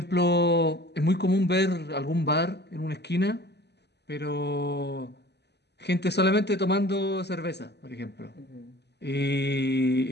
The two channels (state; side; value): late; right; 0.49 ms